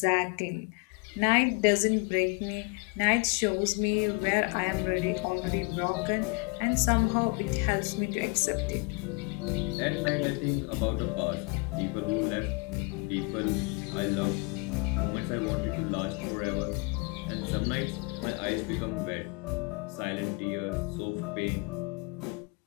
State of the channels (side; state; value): right; quieter; 30.9 dB